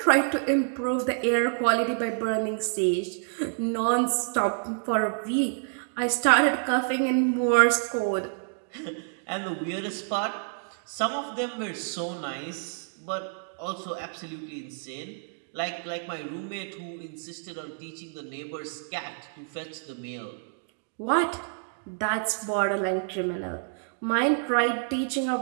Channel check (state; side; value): silent; left; digital silence